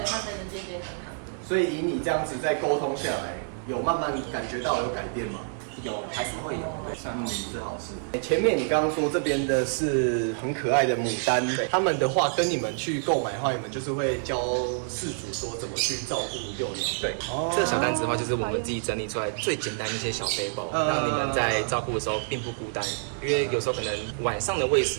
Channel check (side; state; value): left; silent; digital silence